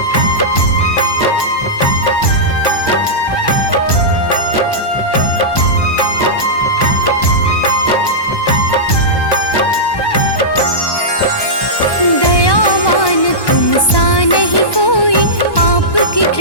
दयावान तुम सा नहीं कोई, आपकी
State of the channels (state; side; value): late; right; 1.1 ms